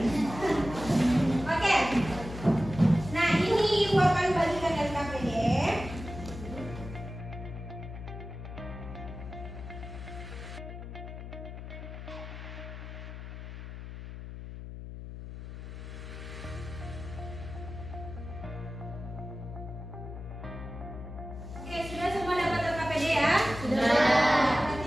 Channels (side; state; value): left; noise; hum, 10 dB below the sound